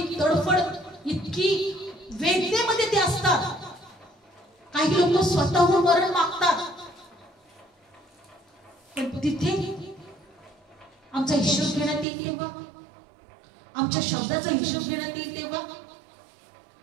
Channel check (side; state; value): left; drops out; at 12.1 s